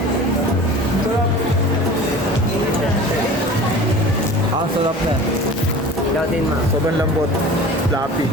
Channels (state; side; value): normal; both; correlation 0.39